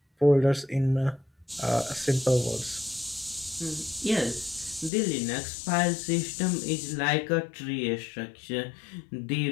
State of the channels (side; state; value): right; drops out; at 4.9 s